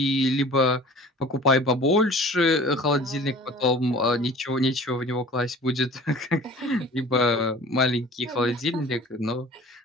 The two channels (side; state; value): both; normal; correlation 0.44